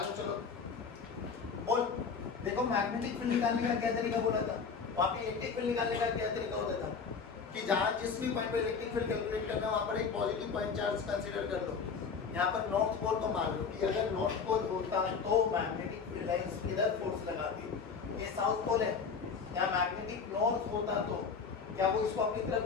चलो बोल, देखो मैग्नेटिक फील्ड निकालने का क्या तरीका बोला था, वहाँ पे इलेक्ट्रिक फील्ड निकालने का क्या तरीका होता था कि जहाँ जिस भी पॉइंट पे इलेक्ट्रिक फील्ड कैलकुलेट करना है वहाँ पर एक पॉजिटिव पॉइंट चार्ज कंसीडर कर लो। यहाँ पर नॉर्थ पोल को मान लो कि अगर नॉर्थ पोल होता तो मैग्नेटिक फील्ड लाइंस इधर फोर्स लगाती, ये साउथ पोल है, यहाँ मैग्नेटिक नॉर्थ होता तो क्या वो इसको अपनी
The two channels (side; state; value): right; quieter; 5.6 dB